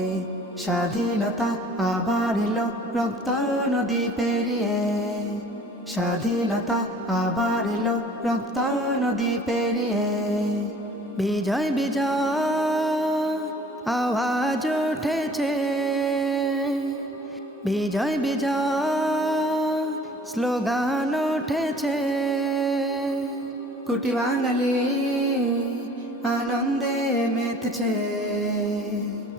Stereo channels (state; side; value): normal; both; correlation 0.51